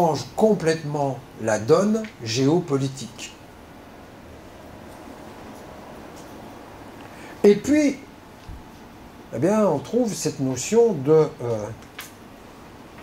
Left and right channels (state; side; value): identical; both; correlation 1.00